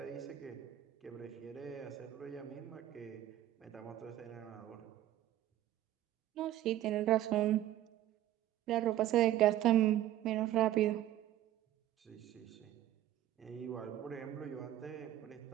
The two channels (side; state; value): left; quieter; 13.1 dB